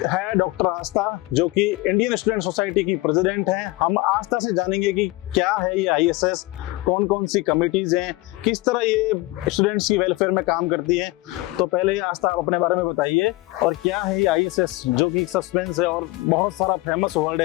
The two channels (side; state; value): right; quieter; 20.5 dB